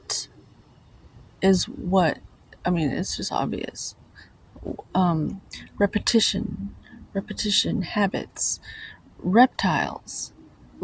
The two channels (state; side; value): identical; both; correlation 1.00